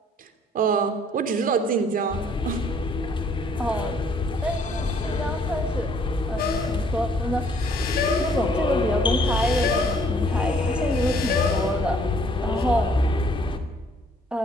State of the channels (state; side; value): normal; both; correlation 0.62